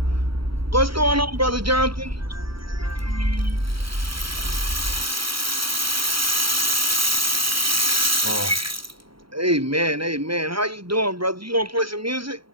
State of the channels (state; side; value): late; left; 0.74 ms